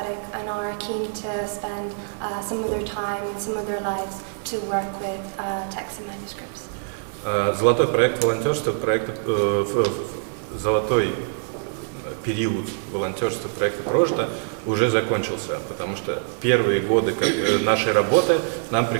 and are keen to spend some of their time and some of their lives to work with texts and manuscripts. Золотой проект волонтерства, золотой период волонтерства проекта «Прожито» уже закончился, потому что первые годы нашей работы нам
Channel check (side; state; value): left; silent; digital silence